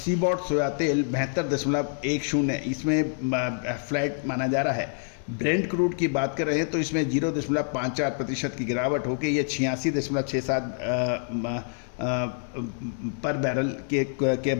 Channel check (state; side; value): silent; right; 60 dB below the other